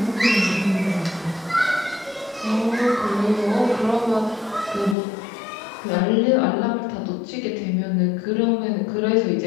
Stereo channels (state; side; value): drops out; right; at 5.0 s